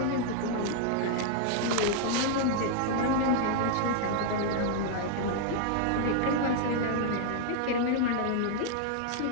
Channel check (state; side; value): different; both; correlation 0.00